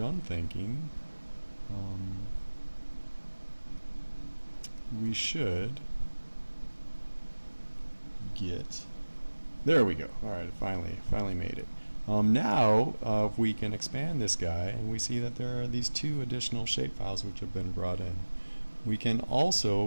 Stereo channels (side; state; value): both; inverted; correlation -1.00